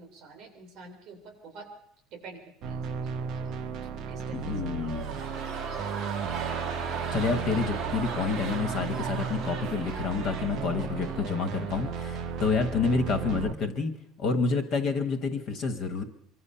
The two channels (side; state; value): both; normal; correlation 0.45